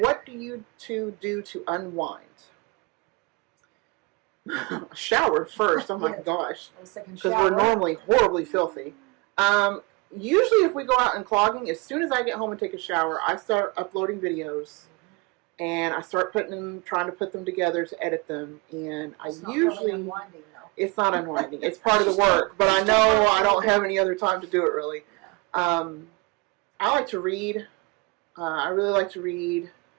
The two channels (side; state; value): left; quieter; 27.4 dB